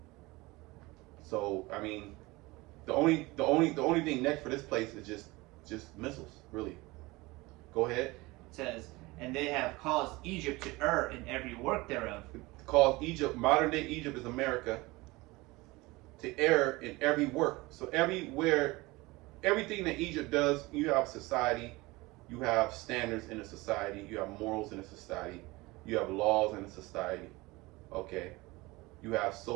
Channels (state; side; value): quieter; left; 22.0 dB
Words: So I mean, the only thing next for this place is just missiles, really. Go ahead. It says, and they have caused Egypt to err in every work thereof. Cause Egypt, modern day Egypt is America, to err in every work. So everywhere, everything that Egypt does, you have society, you have standards in a society, you have morals in a society, you have laws in a society, okay? You have